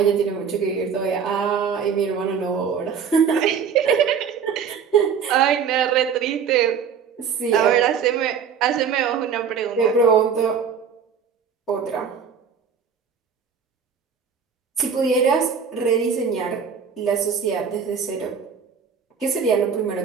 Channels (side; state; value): left; quieter; 6.8 dB